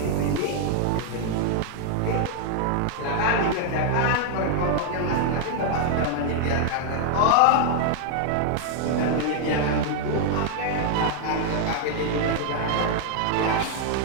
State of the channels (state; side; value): different; both; correlation 0.00